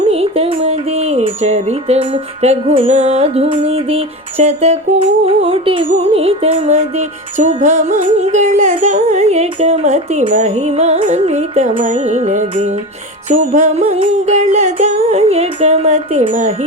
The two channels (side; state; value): both; normal; correlation 0.25